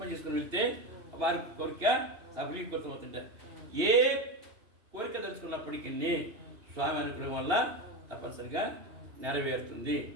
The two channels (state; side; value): late; left; 2.8 ms